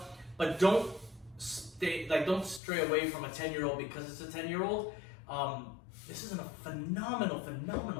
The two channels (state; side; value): drops out; right; at 2.6 s